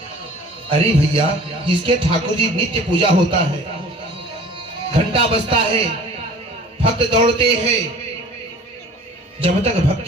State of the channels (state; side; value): normal; both; correlation 0.46